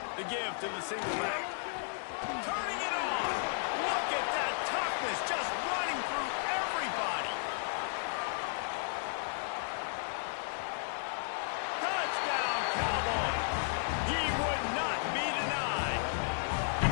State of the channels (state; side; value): silent; right; digital silence